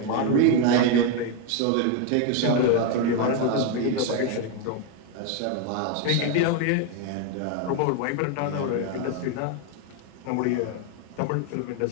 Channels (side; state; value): both; different; correlation 0.01